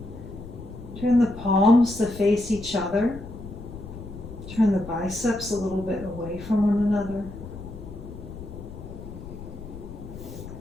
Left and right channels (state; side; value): noise; left; rumble, 12 dB below the sound